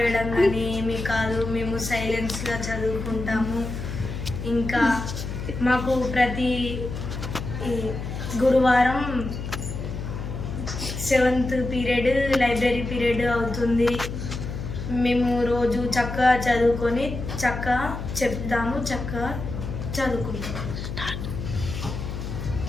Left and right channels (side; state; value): left; noise; hum, 6 dB below the sound